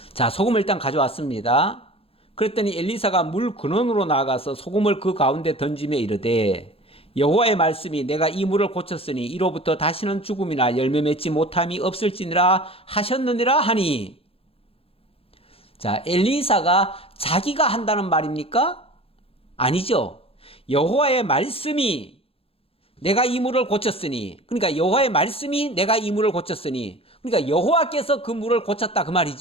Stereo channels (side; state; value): right; late; 0.27 ms